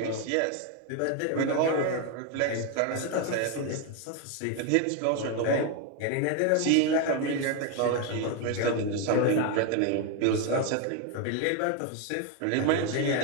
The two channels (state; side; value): different; both; correlation 0.01